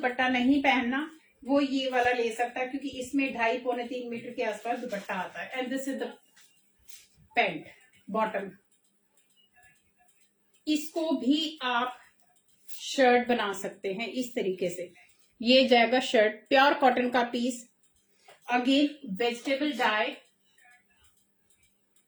नहीं पहनना, वो ये वाला ले सकता है, क्योंकि इसमें 2.5-3 मीटर के आसपास दुपट्टा आता है। And this is the pant bottom. इसको भी आप शर्ट बना सकते हैं इस तरीके से। ये जाएगा शर्ट, प्योर कॉटन का piece. Again vegetable dye.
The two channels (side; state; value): both; identical; correlation 1.00